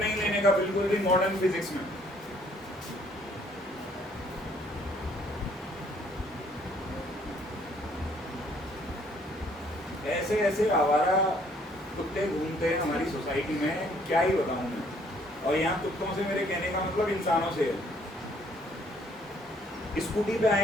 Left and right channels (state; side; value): normal; both; correlation 0.63